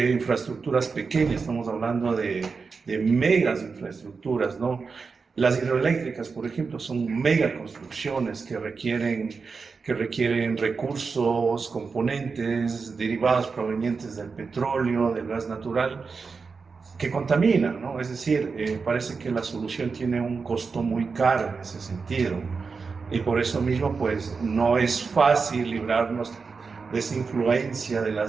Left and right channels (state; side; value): quieter; left; 4.9 dB